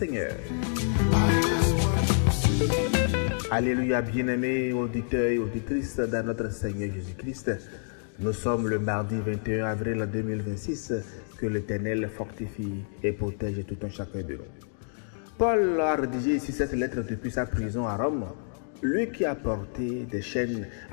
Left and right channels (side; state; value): right; silent; digital silence